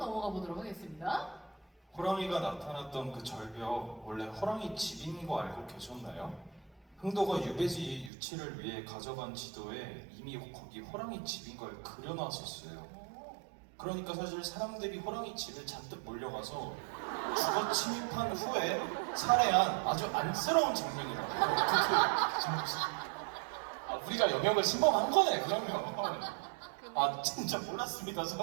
보도록 하겠습니다. 호랑이가 나타났던 그 절벽, 원래 호랑이 집인 거 알고 계셨나요? 흥도가 유배지 유치를 위해 가져간 지도에 이미 거기 호랑이 집인 걸 그려놨었어요. 그러니까 사실 사람들이 호랑이 집에 잔뜩 몰려가서 주거 침입한 후에 살해한 아주 안쓰러운 장면이라고요. 우리가 영역을 침범한 거네, 그러면. 진짜 몰랐습니다,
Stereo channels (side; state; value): left; drops out; at 8.1 s